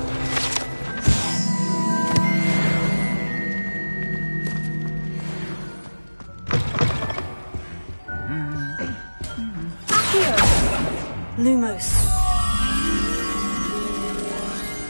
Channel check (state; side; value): inverted; both; correlation -1.00